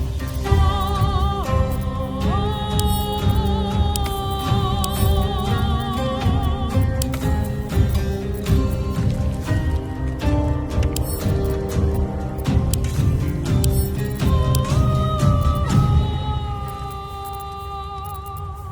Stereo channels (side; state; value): both; identical; correlation 1.00